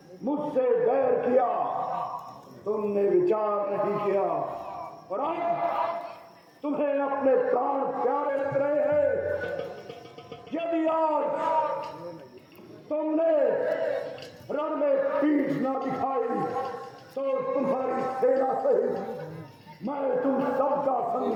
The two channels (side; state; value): both; identical; correlation 1.00